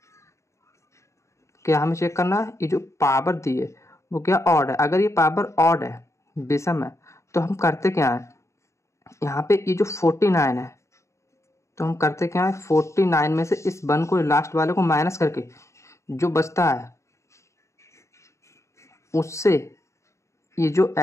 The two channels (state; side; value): late; right; 0.14 ms